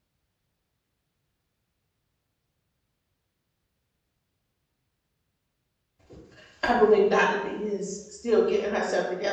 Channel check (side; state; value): both; identical; correlation 1.00